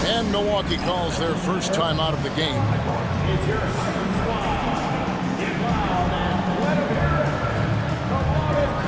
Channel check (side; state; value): both; identical; correlation 1.00